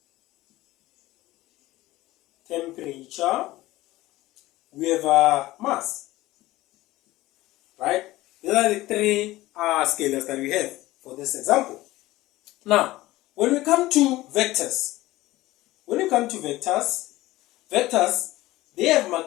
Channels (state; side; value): quieter; right; 17.6 dB